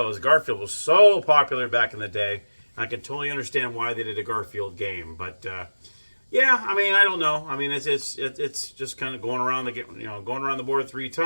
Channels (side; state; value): both; inverted; correlation -1.00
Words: Garfield was so popular back in the day. I can totally understand why they did a Garfield game. But yeah, I mean, I don't know. I mean, it's just kind of going around the board 3